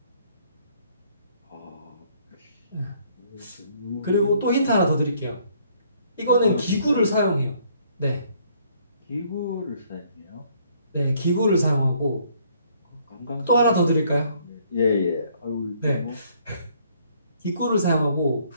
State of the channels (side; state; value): both; inverted; correlation -0.64